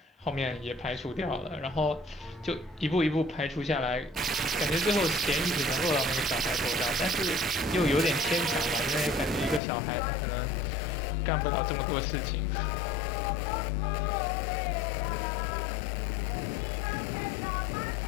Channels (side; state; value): right; drops out; at 9.6 s